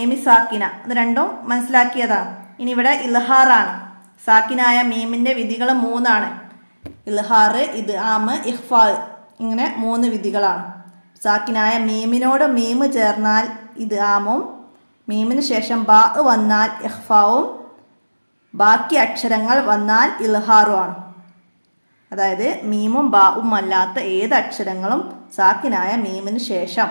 സാക്കിന, ഇത് രണ്ടും മനസ്സിലാക്കിയതാണ്. ഇനി ഇവിടെ ഇൽഹാറാണ്. സാക്കിനായ മീമിൻ്റെ വിധികൾ 3ആണ്. ഇൽഹാർ, ഇദ്ആം, ഇഖ്ഫാ, ഇങ്ങനെ 3 വിധികളാണ്. സാക്കിനായ മീമിനോട് മീമ് ചേർന്നാൽ ഇദ്ആമും, മീമിന് ശേഷം ബാ വന്നാൽ ഇഖ്ഫാവും, ബാക്കി അക്ഷരങ്ങൾ വന്നാൽ ഇൽഹാറുമാണ്. അതായത് മീമും ബാവും അല്ലാത്ത ഏത് അക്ഷരങ്ങളും സാക്കിനായ മീമിന് ശേഷം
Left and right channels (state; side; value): inverted; both; correlation -1.00